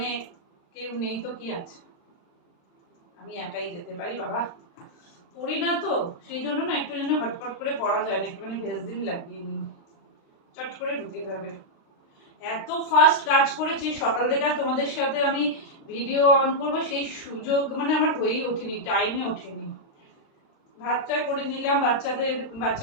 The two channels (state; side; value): late; right; 36 ms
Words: কেউ নেই তো কি আছে, আমি একাই যেতে পারি। বাবা পড়ি না তো, সেই জন্য না একটু যেন হটপট করে পড়া যায় না, একটুখানি ভেজদিন লাগিয়ে নিই, চট করে ঢুকে যাবে। এত ফাস্ট কাজ করেছি সকাল থেকে, আর তোমাদের সাথে আমি ভিডিও অন করবো সেই সুযোগ মানে আমার হয়েই ওঠেনি, টাইমই ওঠেনি। ভাতটা করে নিলাম